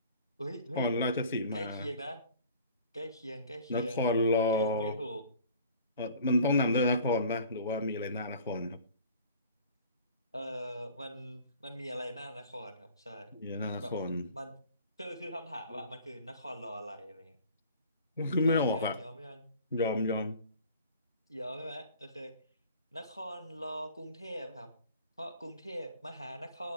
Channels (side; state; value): both; inverted; correlation -0.48